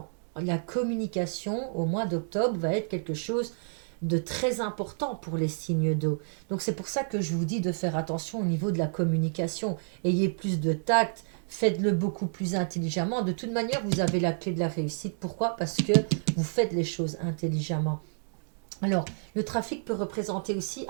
La communication au mois d'octobre va être quelque chose de très important pour les signes d'eau. Donc c'est pour ça que je vous dis de faire attention au niveau de la communication. Ayez plus de tact, faites-le beaucoup plus intelligemment. De toute manière, vous avez la clé de la réussite. Pourquoi? Parce que vous faites les choses intelligemment. Alors, le trafic peut représenter aussi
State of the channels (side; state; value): left; silent; digital silence